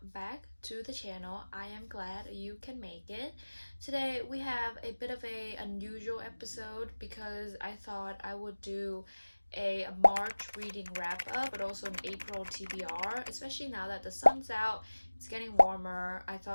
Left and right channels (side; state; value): both; inverted; correlation -1.00